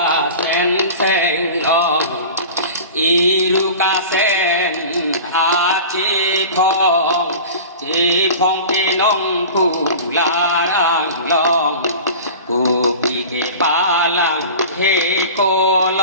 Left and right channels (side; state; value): both; inverted; correlation -0.36